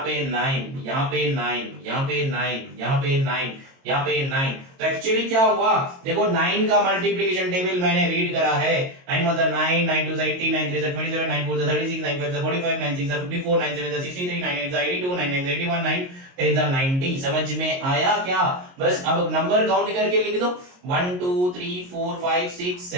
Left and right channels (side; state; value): left; late; 22 ms